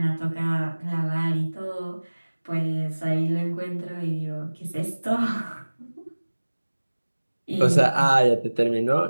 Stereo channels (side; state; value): both; inverted; correlation -1.00